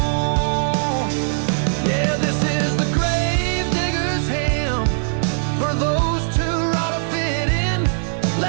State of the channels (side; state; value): left; silent; digital silence